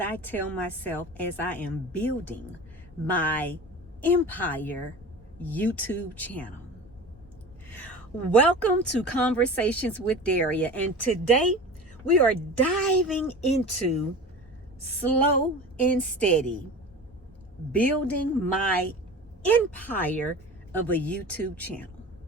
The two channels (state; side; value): normal; both; correlation 0.35